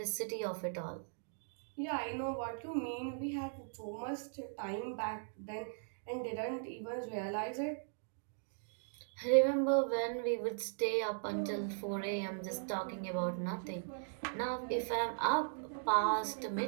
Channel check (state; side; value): silent; left; digital silence